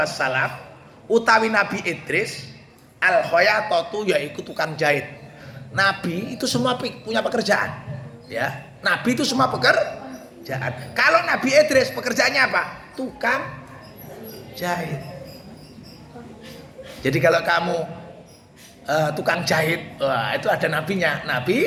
wassalam utawi nabi Idris al khayatatu yaiku tukang jahit. Nabi itu semua punya pekerjaan ya. Nabi itu semua pekerjaan. Kalau Nabi Idris pekerjaannya apa? Tukang jahit. Jadi kalau kamu tukang jahit, wah, itu ada nabinya,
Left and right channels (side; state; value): both; identical; correlation 1.00